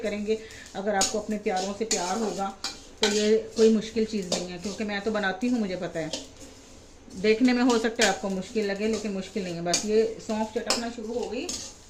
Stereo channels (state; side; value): identical; both; correlation 1.00